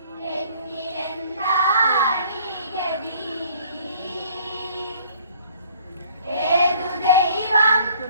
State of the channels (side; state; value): both; inverted; correlation -0.56